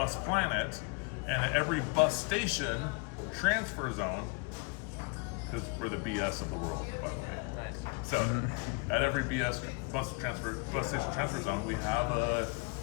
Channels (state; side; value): quieter; right; 30.7 dB